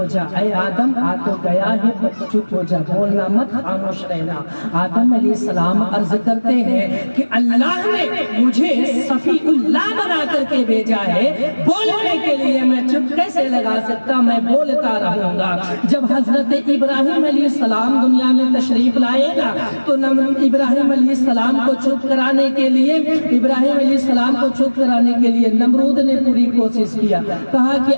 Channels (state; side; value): inverted; both; correlation -1.00